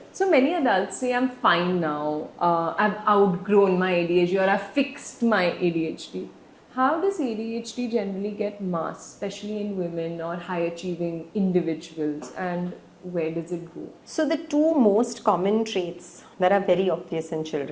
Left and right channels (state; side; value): identical; both; correlation 1.00